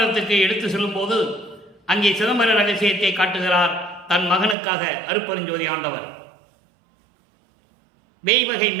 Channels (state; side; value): drops out; left; at 4.5 s